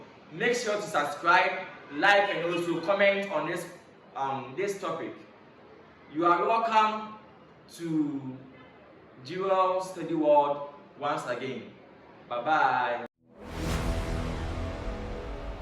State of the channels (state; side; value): identical; both; correlation 1.00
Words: Make sure to subscribe, like, and also comment on this topic. You are welcome to Jewel Study World once again. Bye bye.